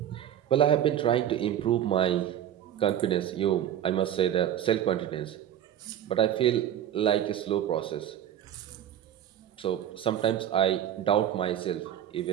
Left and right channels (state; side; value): quieter; left; 10.6 dB